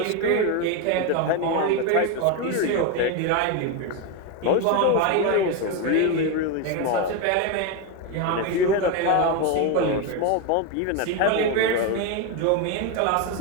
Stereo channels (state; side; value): different; both; correlation 0.02